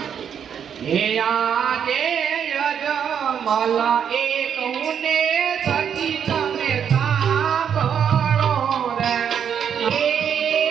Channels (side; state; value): left; quieter; 8.1 dB